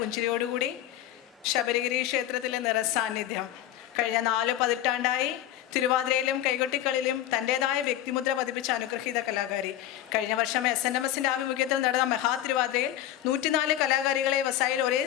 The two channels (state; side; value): quieter; right; 12.6 dB